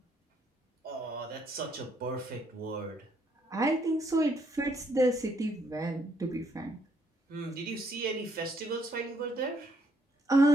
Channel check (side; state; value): both; normal; correlation 0.70